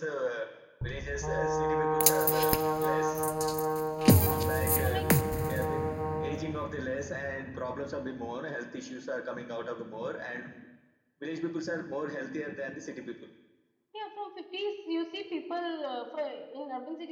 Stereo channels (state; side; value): identical; both; correlation 1.00